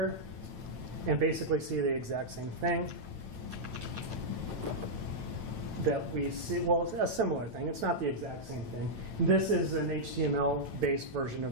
and basically see the exact same thing that we see. Well, it's a similar thing. It's not the exact same thing. This is an HTML-based version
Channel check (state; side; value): late; left; 9.0 ms